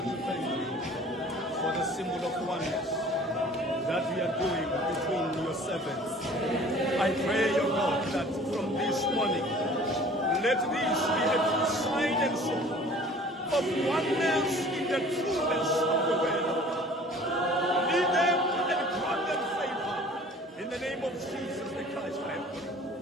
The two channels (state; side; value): normal; both; correlation 0.48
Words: to thank you for the symbol of oneness that we are doing between your servants. I pray, O God, that from this morning, let this be a true sign and symbol of oneness in the trueness of the word of God. Lead them and grant them favor. In the name of Jesus the Christ, I have prayed.